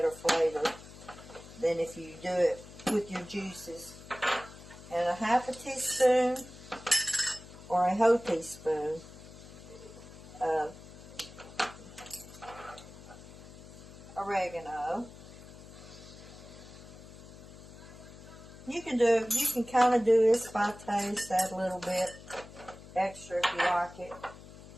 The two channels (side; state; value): left; noise; hum, 17 dB below the sound